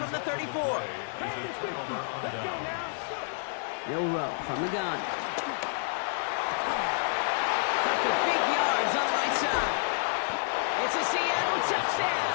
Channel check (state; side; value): silent; right; 58 dB below the other